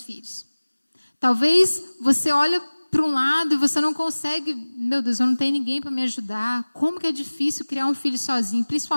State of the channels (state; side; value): inverted; both; correlation -1.00